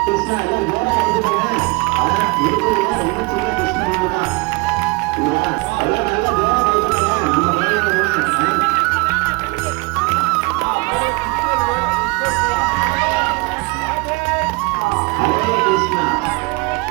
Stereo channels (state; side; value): quieter; left; 26.6 dB